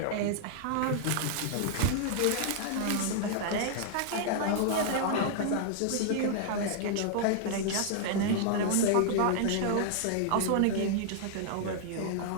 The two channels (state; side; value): different; both; correlation -0.01